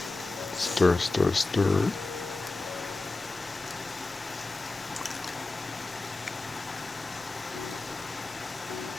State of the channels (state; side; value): quieter; right; 3.2 dB